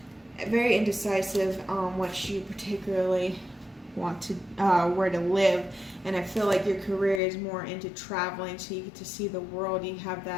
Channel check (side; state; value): right; drops out; at 7.2 s